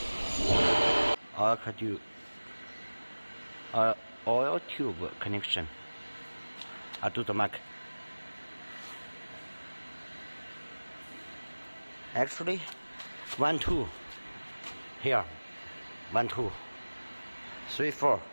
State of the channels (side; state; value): both; inverted; correlation -1.00